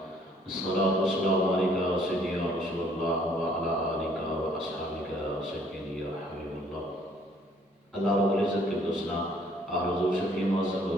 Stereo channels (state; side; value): normal; both; correlation 0.62